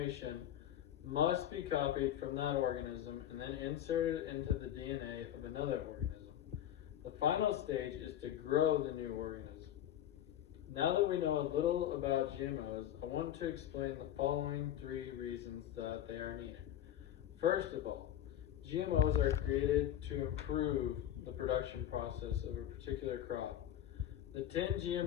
must be copied from that organism and then inserted into the DNA of another organism. The final stage is to grow the new organism. Now that we know a little about GMOs, I want to explain the following 3 reasons that they are needed. First of all, GMOs are created to improve the production process of a particular crop. The 10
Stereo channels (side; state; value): right; quieter; 11.3 dB